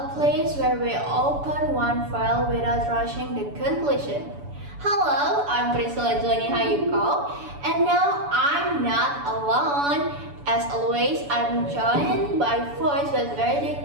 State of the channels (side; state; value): left; late; 7.0 ms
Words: place where we open one file without rushing the conclusion. Hello, I'm Priscilla Joni Hayuko, and now I'm not alone. As always, I'm joined by voices with very